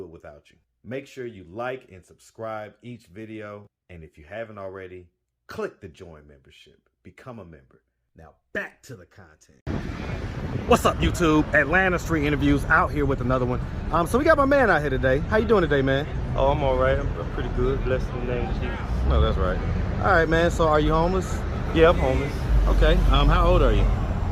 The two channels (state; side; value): identical; both; correlation 1.00